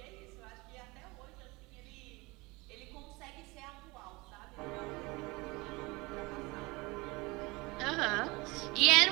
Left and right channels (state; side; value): quieter; left; 23.9 dB